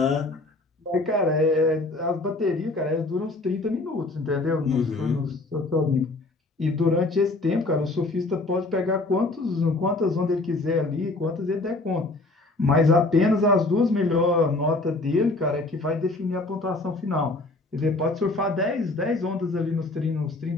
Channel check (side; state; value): right; quieter; 3.0 dB